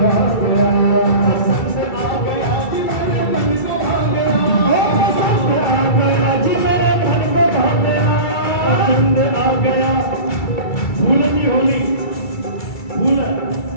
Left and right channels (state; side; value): late; right; 2.3 ms